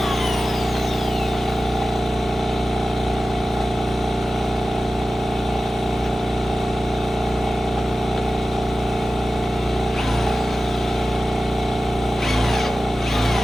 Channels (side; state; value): both; normal; correlation 0.95